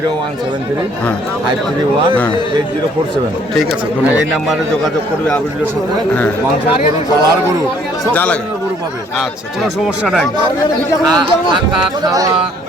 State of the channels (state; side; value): normal; both; correlation 0.61